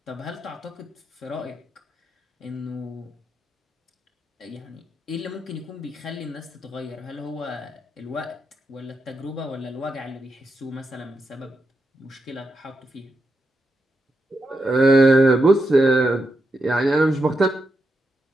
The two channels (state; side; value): normal; both; correlation 0.85